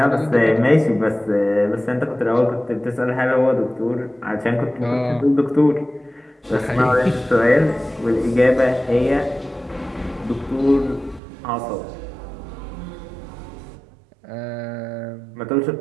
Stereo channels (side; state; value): left; drops out; at 11.2 s